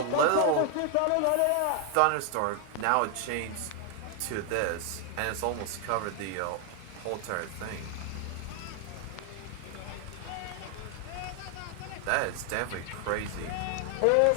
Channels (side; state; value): both; different; correlation 0.00